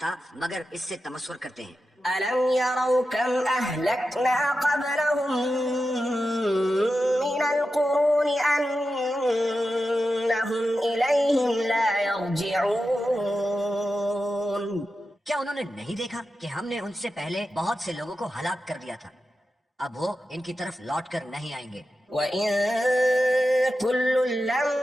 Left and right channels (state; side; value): normal; both; correlation 0.91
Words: مگر اس سے تمسخر کرتے ہیں. ألم يروا كم أهلكنا قبلهم من القرون أنهم إليهم لا يرجعون. کیا انہوں نے نہیں دیکھا کہ ہم نے ان سے پہلے بہت سے لوگوں کو ہلاک کر دیا تھا، اب وہ ان کی طرف لوٹ کر نہیں آئیں گے. وَإِن كُلٌّ